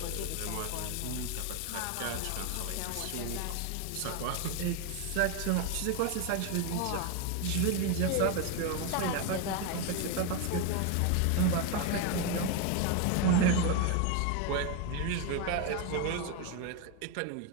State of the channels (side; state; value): both; different; correlation 0.02